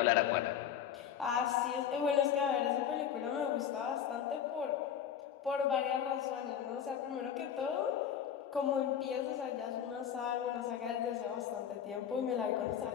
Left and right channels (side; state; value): right; quieter; 9.0 dB